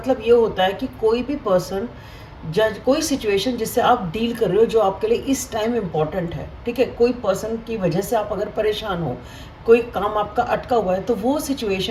ये होता है कि कोई भी पर्सन, जज कोई सिचुएशन जिससे आप डील कर रहे हो जो आपके लिए इस टाइम इम्पॉर्टेंट है, ठीक है, कोई पर्सन की वजह से आप अगर परेशान हो, कोई काम आपका अटका हुआ है, तो वो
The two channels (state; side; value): identical; both; correlation 1.00